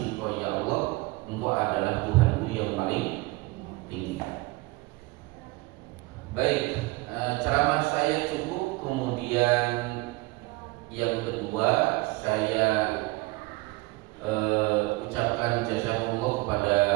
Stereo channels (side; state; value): left; quieter; 23.1 dB